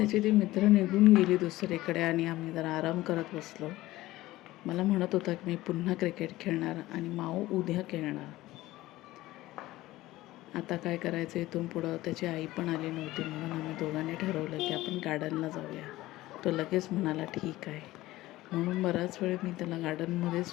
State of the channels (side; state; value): right; quieter; 17.2 dB